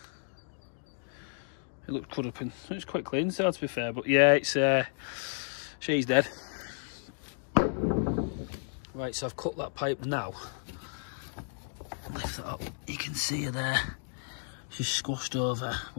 It looked cut up and it's quite clean inside, to be fair, but yeah, it's she's dead. Right, so I've cut that pipe now. Lift that up, you can see her there. She's squashed over,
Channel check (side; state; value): right; silent; digital silence